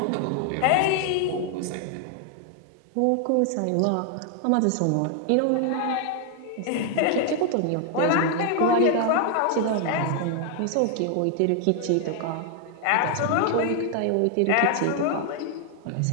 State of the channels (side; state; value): both; different; correlation 0.00